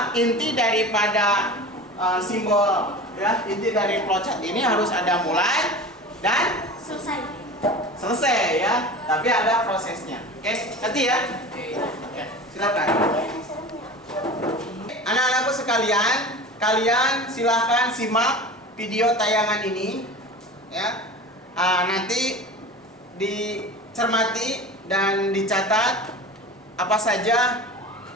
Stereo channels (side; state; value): both; normal; correlation 0.34